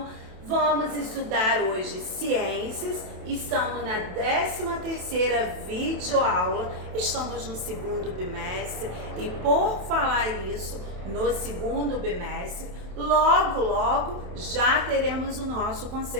vamos estudar hoje ciências. Estamos na 13ª videoaula, estamos no segundo bimestre e por falar isso, no segundo bimestre, logo já teremos o nosso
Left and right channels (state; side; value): late; left; 28 ms